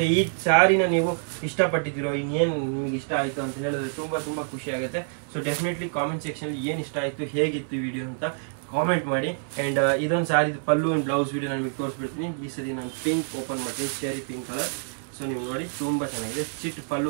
ಈ ಸಾರಿನ ನೀವು ಇಷ್ಟಪಟ್ಟಿದ್ದೀರೋ, ಇನ್ನೇನು ನಿಮ್ಗೆ ಇಷ್ಟ ಆಯ್ತು ಅಂತ ಹೇಳಿದ್ರೆ ತುಂಬಾ ತುಂಬಾ ಖುಷಿ ಆಗುತ್ತೆ. ಸೊ ಡೆಫಿನೆಟ್ಲಿ ಕಾಮೆಂಟ್ ಸೆಕ್ಷನ್ ಏನ್ ಇಷ್ಟ ಆಯ್ತು, ಹೇಗಿತ್ತು ವಿಡಿಯೋ ಅಂತ ಕಾಮೆಂಟ್ ಮಾಡಿ. ಅಂಡ್ ಇದೊಂದು ಸಾರಿ ಪಲ್ಲು ಅಂಡ್ ಬ್ಲೌಸ್ ವಿಡಿಯೋ ನಾನು ನಿಮಗೆ ತೋರಿಸ್ಬಿಡ್ತೀನಿ. ಈ ಸರಿ ನಾನು ಪಿಂಕ್ ಓಪನ್ ಮಾಡ್ತೀನಿ, ಸ್ಟೇರಿ ಪಿಂಕ್ ಕಲರ್. ಸೊ ನೀವು ನೋಡಿ ತುಂಬಾ ಚೆನ್ನಾಗಿದೆ, ಚಿಟ್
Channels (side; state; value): left; silent; 57 dB below the other